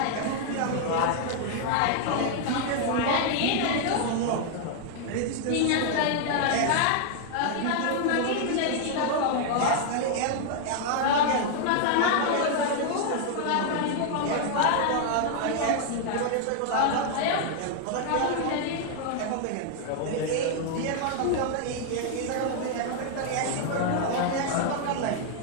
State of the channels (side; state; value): both; different; correlation 0.00